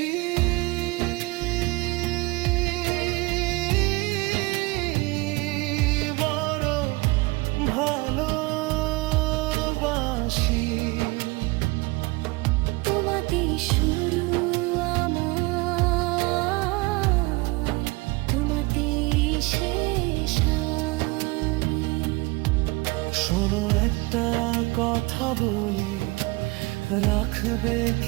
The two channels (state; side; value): quieter; left; 24.1 dB